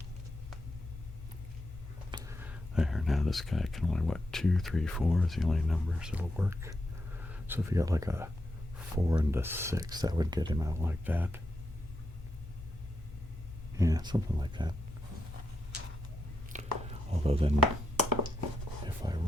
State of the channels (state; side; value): normal; both; correlation 0.84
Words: there, now this guy can only, 2, 3, 4 is the only numbers that'll work. So if you got like a 4 and a 6, that would get him out like that. Yeah, something like that. Although then, if I